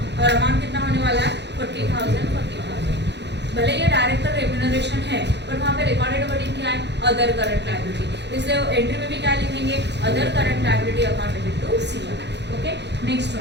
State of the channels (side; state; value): left; late; 0.50 ms